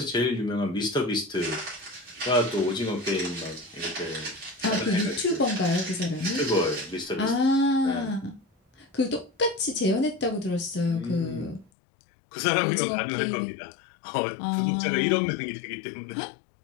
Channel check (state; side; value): drops out; right; at 11.7 s